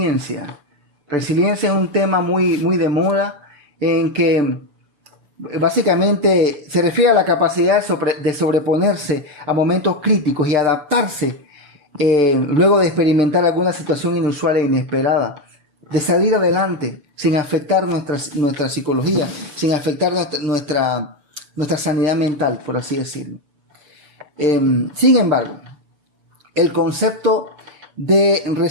Resiliencia es un tema muy de moda, en que básicamente se refiere a la capacidad de sobreponerse a momentos críticos y adaptarse luego de experimentar alguna situación inusual e inesperada, de salir adelante sin afectar nuestra psicología, sin afectar nuestra sanidad mental, por así decirlo. Sin embargo, el concepto de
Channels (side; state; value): left; late; 6.8 ms